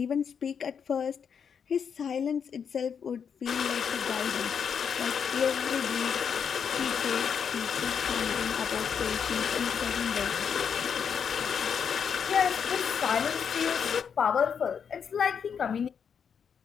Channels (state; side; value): quieter; right; 7.1 dB